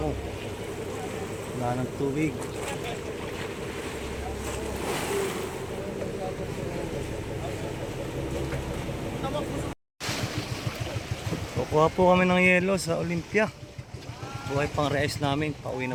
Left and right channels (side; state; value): both; identical; correlation 1.00